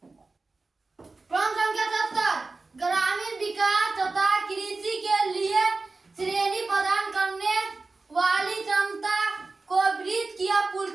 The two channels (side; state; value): left; quieter; 3.7 dB